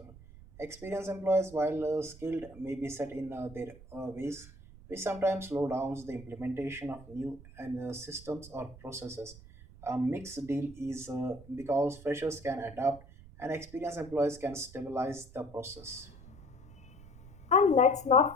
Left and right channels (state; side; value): noise; right; rumble, 19 dB below the sound